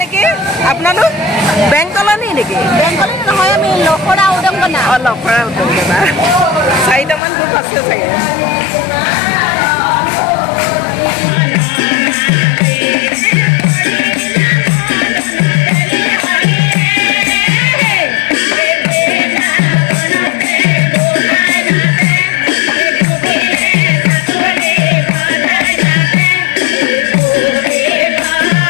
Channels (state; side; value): drops out; right; at 7.2 s